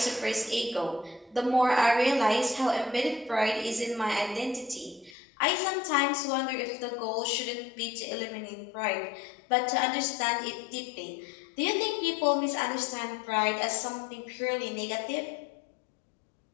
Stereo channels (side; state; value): right; drops out; at 5.2 s